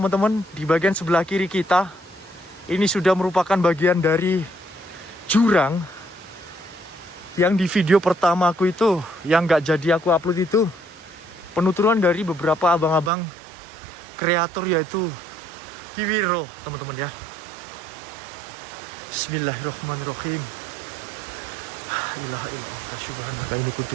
di bagian sebelah kiri kita ini sudah merupakan bagian dari jurang yang di video pertama aku itu, yang gak jadi aku upload itu, penuturan dari beberapa abang-abang kreator yaitu Kiwiro teman-teman ya. Bismillahirrahmanirrahim. Ilaha illallah subhanaka inni kuntu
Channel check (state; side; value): drops out; left; at 13.1 s